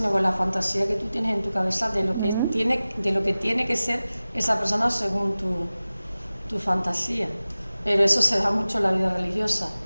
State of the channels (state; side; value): inverted; both; correlation -0.97